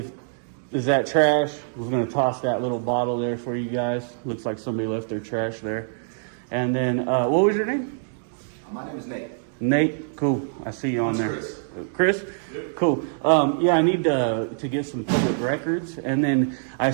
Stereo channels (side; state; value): left; silent; digital silence